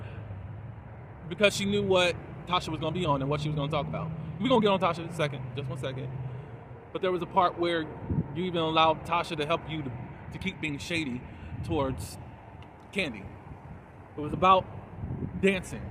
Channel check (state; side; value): identical; both; correlation 1.00